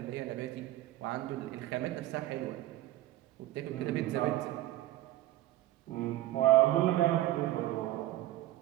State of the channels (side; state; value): left; quieter; 15.3 dB